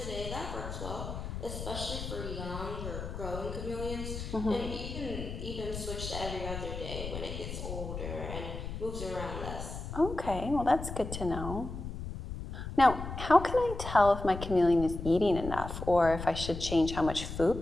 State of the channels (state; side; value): noise; left; rumble, 7 dB below the sound